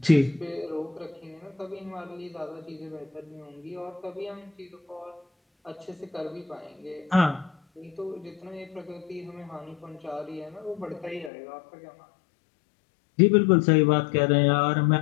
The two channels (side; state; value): right; drops out; at 11.3 s